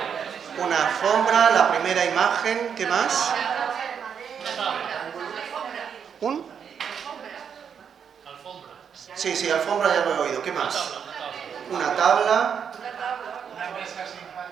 Una alfombra, la primera imagen. ¿Qué más? ¿Un? Sí, alfombra ya lo he oído. ¿Qué más? Una tabla.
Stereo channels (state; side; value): quieter; left; 7.4 dB